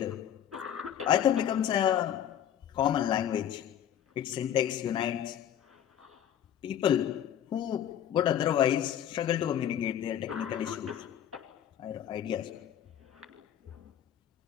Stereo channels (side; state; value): right; quieter; 10.2 dB